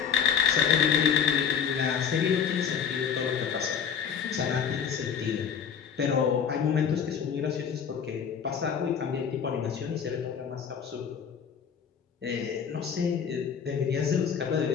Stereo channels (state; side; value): quieter; right; 7.4 dB